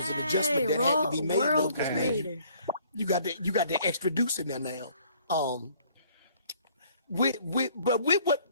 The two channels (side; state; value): both; inverted; correlation -0.60